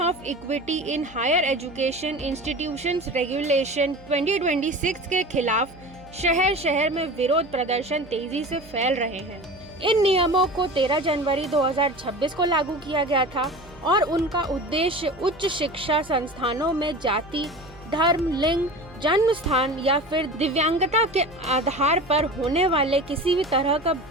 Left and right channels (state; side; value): noise; right; hum, 22 dB below the sound